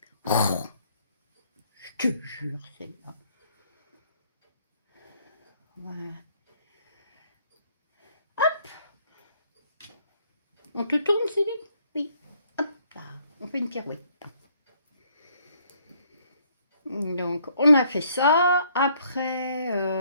Oh, je te jure, c'est là. Voilà. Hop. On te tourne, Céline? Oui. Hop là. On fait une pirouette. Donc, on a fait ça. Après,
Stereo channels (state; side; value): inverted; both; correlation -0.66